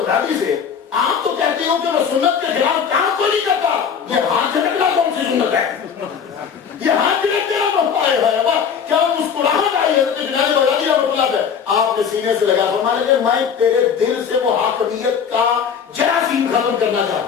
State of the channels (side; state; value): right; quieter; 7.1 dB